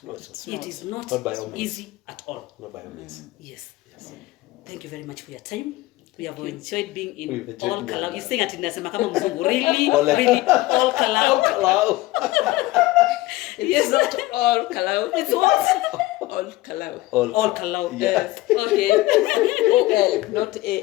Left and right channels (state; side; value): quieter; right; 18.5 dB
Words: It is not by all means. easy at all. Not by all means. Yes. Thank you very much for your time. We have enjoyed being in We've enjoyed all being Kalau. here. You're saying atinasema kama mzungu. Really, all Kalau. Hello. It's not all Kalau. It's what? All Kalau. All Kalau. Yes. Okay. O-L, not